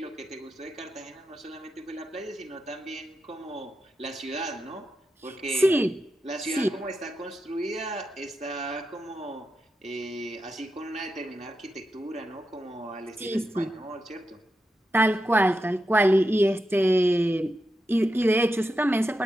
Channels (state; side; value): normal; both; correlation 0.87